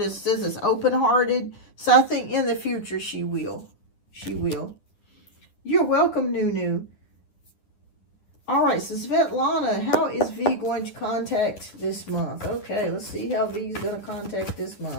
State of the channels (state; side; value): late; right; 9.9 ms